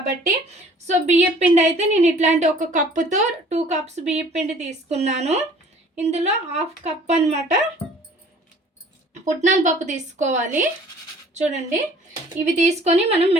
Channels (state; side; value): normal; both; correlation 0.52